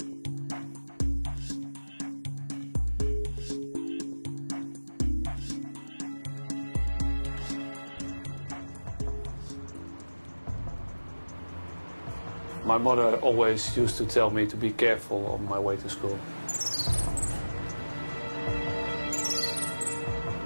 My mother always used to tell me to be careful on my way to school.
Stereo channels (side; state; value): both; inverted; correlation -1.00